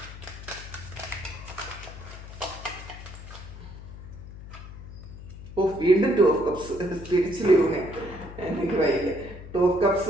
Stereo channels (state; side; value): noise; left; hum, 13 dB below the sound